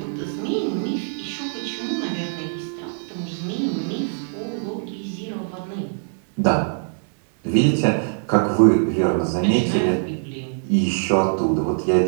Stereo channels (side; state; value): left; silent; digital silence